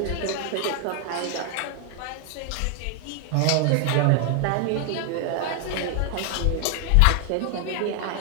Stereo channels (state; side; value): different; both; correlation 0.00